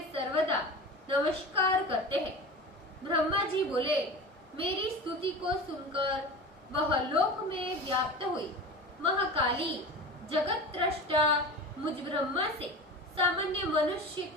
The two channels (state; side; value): normal; both; correlation 0.32